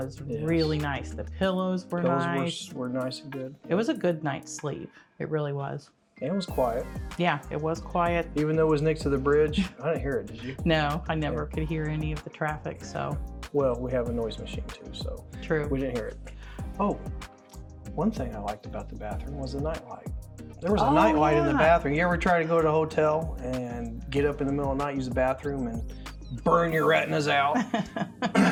really nice. The pillows were nice. Were nice and good. It was a good night's sleep. It really was. And it was quiet. Yeah, it was quiet. Even though it was next to the bridge, I didn't hear it, did you? No, I never could hear any of the traffic, so. Well, we have a noise machine too, so. True. We didn't hear it. Oh, one thing I liked about the bathroom was the nightlight. There was a nightlight in the bathroom. You ever try to go to a hotel and get up in the middle of the night, use the bathroom, and burn your retinas out?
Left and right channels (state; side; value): identical; both; correlation 1.00